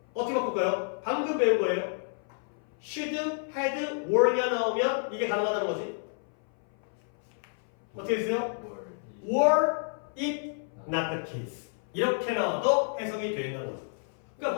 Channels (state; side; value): silent; right; 57 dB below the other